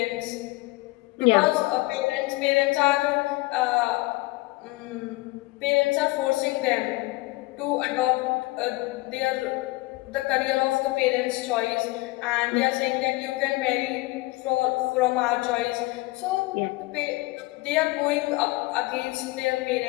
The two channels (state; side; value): quieter; right; 21.9 dB